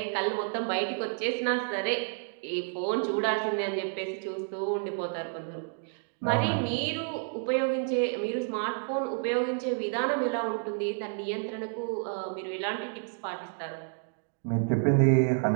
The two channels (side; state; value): left; silent; 58 dB below the other